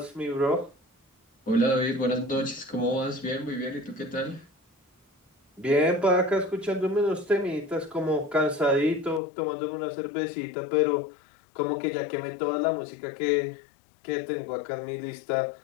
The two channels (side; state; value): right; drops out; at 9.2 s